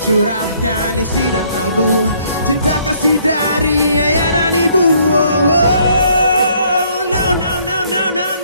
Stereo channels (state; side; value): inverted; both; correlation -0.65